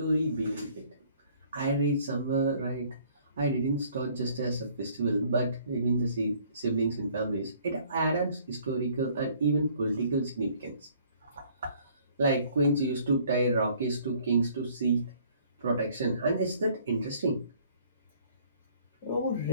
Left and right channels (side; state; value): both; inverted; correlation -0.59